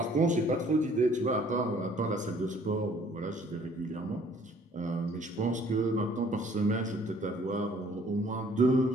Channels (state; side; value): normal; both; correlation 0.58